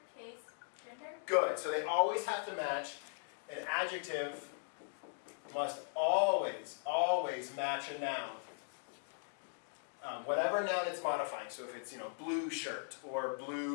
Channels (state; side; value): silent; right; digital silence